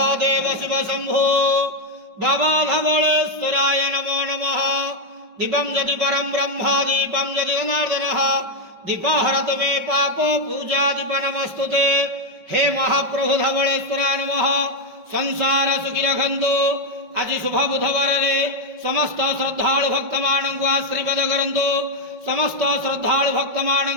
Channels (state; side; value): late; left; 5.3 ms